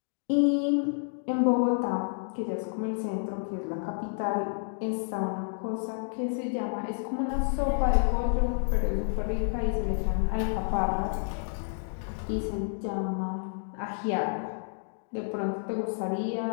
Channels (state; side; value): silent; right; digital silence